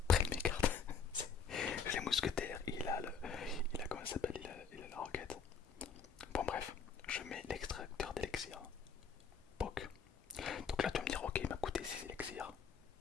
prennent mes cartes. Les mousquetaires, il a comment ça s'appelle, il a la roquette. Bon bref, je mets l'extracteur d'élixir. POC. Donc là tu vas me dire ok il m'a coûté 6 élixirs.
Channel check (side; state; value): right; quieter; 6.1 dB